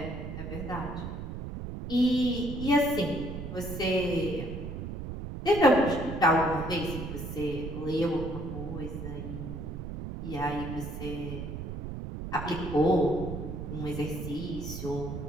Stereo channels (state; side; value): noise; right; rumble, 7 dB below the sound